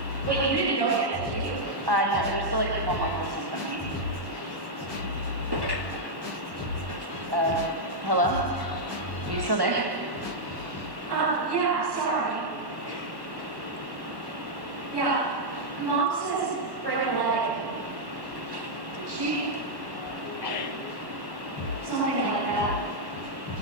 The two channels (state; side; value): late; left; 1.1 ms